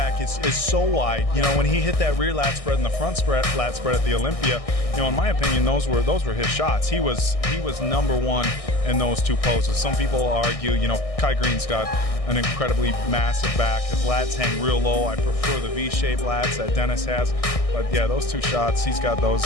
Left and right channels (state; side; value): late; right; 1.6 ms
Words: is so wide. When he hit that rear lat spread and the front lat spread at the Olympia, in my opinion, those were his shots. He was number one in those two poses. Some people argue, Kai Green's got an incredibly massive back. His lats hang real low. I prefer the V-shaped lats that Dennis has. But yeah, those two shots, he's got those